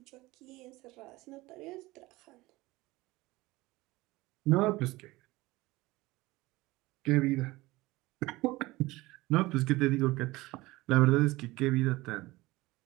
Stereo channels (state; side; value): quieter; left; 20.1 dB